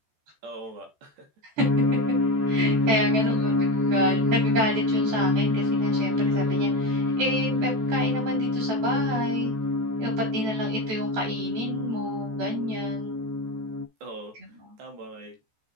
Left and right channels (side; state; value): left; late; 14 ms